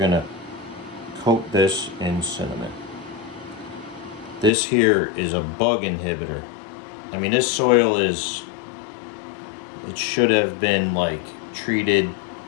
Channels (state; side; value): drops out; right; at 4.5 s